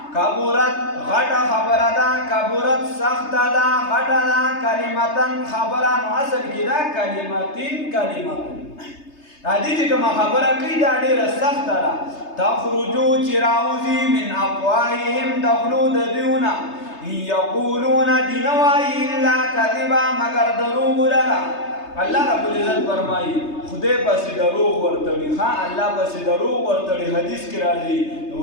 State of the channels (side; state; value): right; late; 3.3 ms